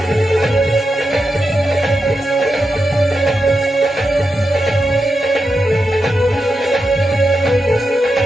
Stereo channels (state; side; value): normal; both; correlation 0.88